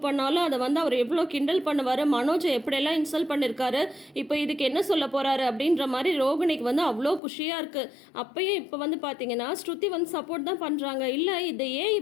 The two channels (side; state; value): right; drops out; at 7.2 s